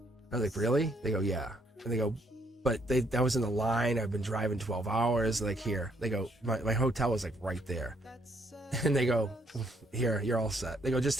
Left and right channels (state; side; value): normal; both; correlation 0.70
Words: I was like, really? They go, yeah. And they go, but I was in the line. I've been driving 12 hours. Like, here. They go, my hotel was like right there. And they go, here, you're all set. They go, just